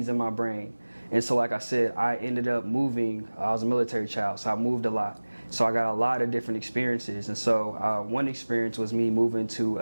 in my brain. And so like I said, I ended up moving. I was a military child, so I moved a lot. So I got a lot of different experiences. And so one experience was me moving to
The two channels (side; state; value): both; inverted; correlation -1.00